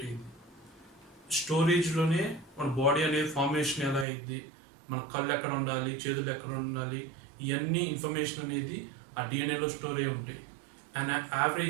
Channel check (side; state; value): left; drops out; at 4.0 s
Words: అయ్యింది. స్టోరేజ్లోనే మన బాడీ అనేది ఫార్మేషన్ ఎలా అయింది, మన కళ్ళు ఎక్కడ ఉండాలి, చేతులు ఎక్కడ ఉండాలి, ఇవన్నీ ఇన్ఫర్మేషన్ అనేది ఆ డిఎన్ఏలో స్టోర్ అయి ఉంటాయి. అండ్